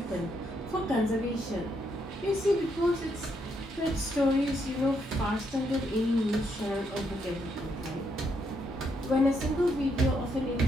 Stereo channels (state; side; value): normal; both; correlation 0.76